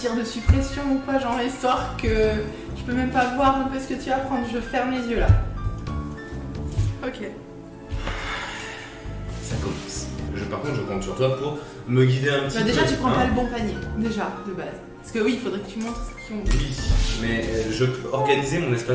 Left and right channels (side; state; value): both; identical; correlation 1.00